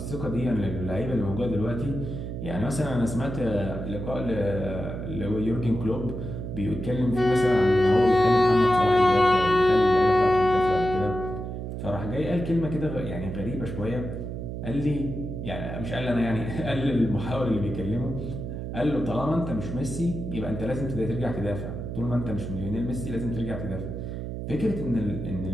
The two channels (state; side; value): noise; right; hum, 6 dB below the sound